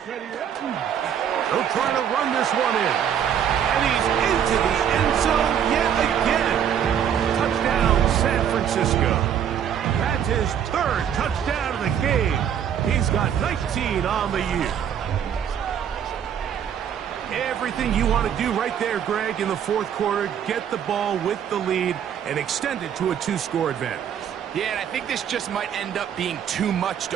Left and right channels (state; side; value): quieter; left; 8.9 dB